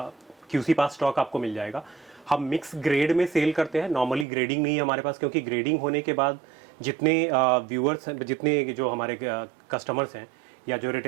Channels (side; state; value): left; drops out; at 4.2 s